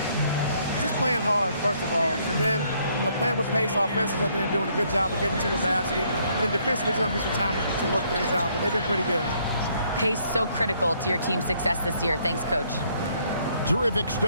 Just playing hard, first of all, and then playing with pace offensively. I think they're doing a good job of getting to the basket. And then defensively, there's going to be some time to work things out, but they've been pretty good. Pace so critical to your team's success this year. Thanks, Coach. Terrific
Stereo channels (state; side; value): inverted; both; correlation -0.68